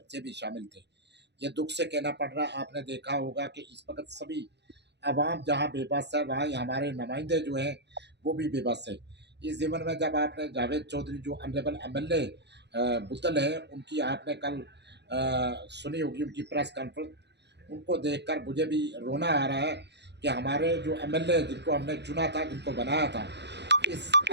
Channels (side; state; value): left; late; 0.50 ms